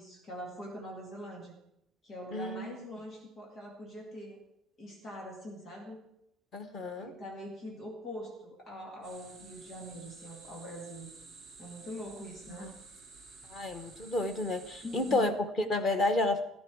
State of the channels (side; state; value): both; normal; correlation 0.53